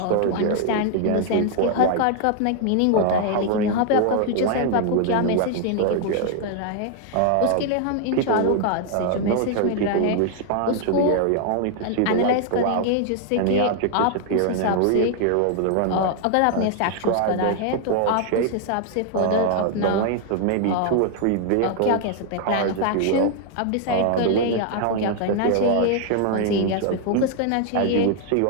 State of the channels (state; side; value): different; both; correlation 0.00